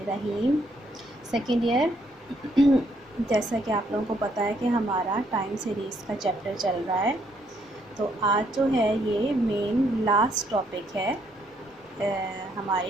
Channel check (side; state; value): both; normal; correlation 0.71